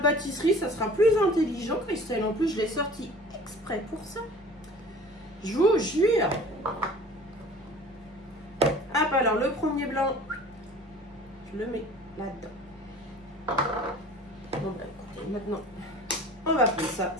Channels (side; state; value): both; normal; correlation 0.45